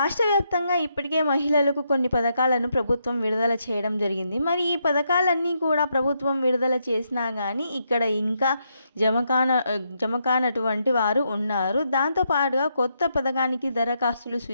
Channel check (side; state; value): both; inverted; correlation -0.79